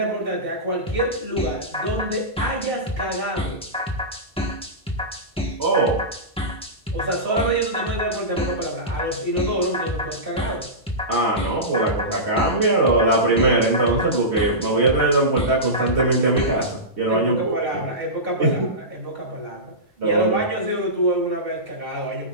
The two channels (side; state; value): both; normal; correlation -0.17